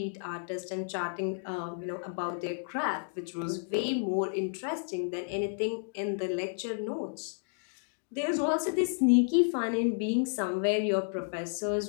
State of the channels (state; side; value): silent; right; digital silence